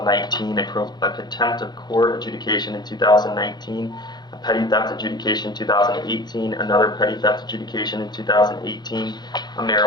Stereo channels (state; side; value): late; right; 0.21 ms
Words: a contempt of court adjudication in 2019, a petty theft adjudication 2018, another petty theft adjudication in 2018, a